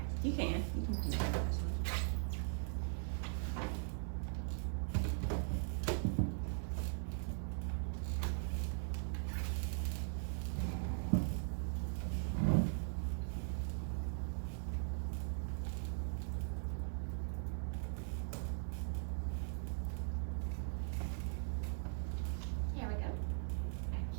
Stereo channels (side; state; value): left; silent; digital silence